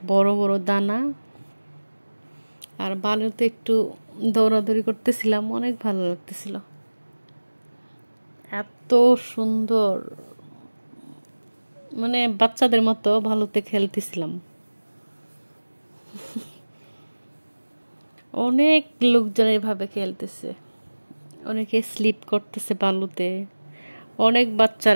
বড় বড় দানা। আর বালুতে একটু দৌড়াদৌড়ি করতেছিলাম, অনেক ভালো লাগতেছিল, এত সুন্দর, মানে বাচ্চাদের মতো বালুতে খেলতেছিলাম। অনেক লোকজন এভাবে খেলতেছে, অনেকে স্লিপ করতেছে বালুতে, অনেক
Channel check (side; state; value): both; inverted; correlation -1.00